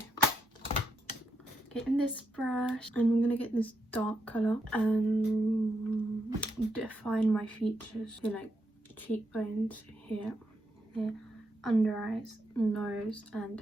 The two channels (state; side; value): normal; both; correlation 0.81